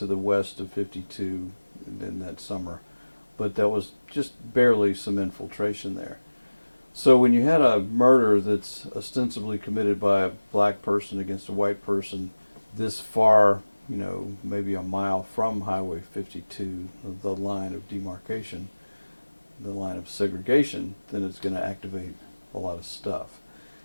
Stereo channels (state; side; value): inverted; both; correlation -1.00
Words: the west of 52 in that summer, but that was just barely some infiltration there. So when you had a murder that's ostensibly committed by a black person against a white person this far, you know, maybe a mile from Highway 52, the line of demarcation, the line of segregation, then it's going to activate a lot of stuff,